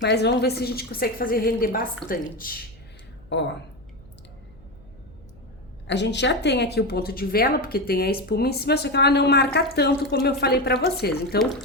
vamos ver se a gente consegue fazer render bastante. Ó, a gente já tem aqui o ponto de vela, porque tem a espuma em cima, só que ela não marca tanto como eu falei pra vocês. Então,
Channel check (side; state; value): left; noise; hum, 26 dB below the sound